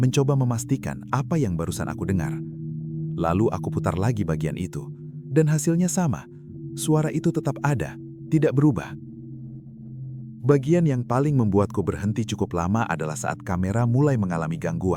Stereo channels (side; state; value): both; identical; correlation 1.00